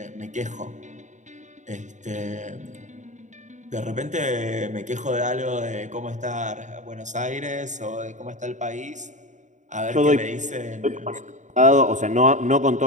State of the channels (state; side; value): late; left; 0.35 ms